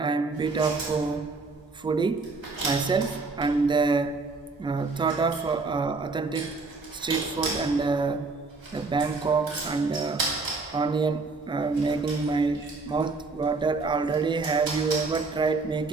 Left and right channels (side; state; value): left; quieter; 3.9 dB